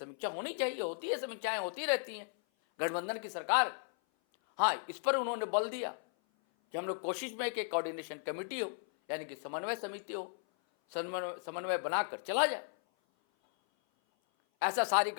होनी चाहिए, होती है, समीक्षाएं होती रहती हैं, गठबंधन की सरकार। हाँ, इस पर उन्होंने बल दिया कि हम लोग कोशिश में कि कोऑर्डिनेशन कमेटी हो, यानी कि समन्वय समिति हो, समन्वय बनाकर चला जाए। ऐसा सारी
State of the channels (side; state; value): right; silent; 54 dB below the other